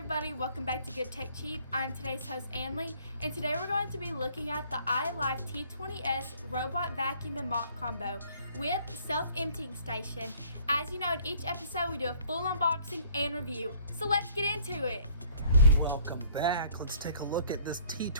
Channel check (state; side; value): inverted; both; correlation -0.58